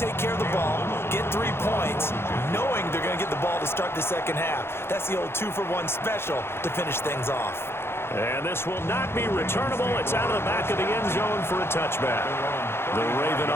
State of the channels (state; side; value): late; right; 0.12 ms